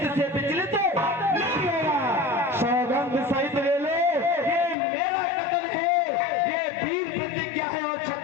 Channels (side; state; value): right; drops out; at 4.8 s